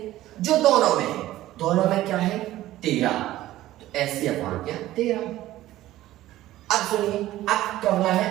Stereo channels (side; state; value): left; quieter; 15.1 dB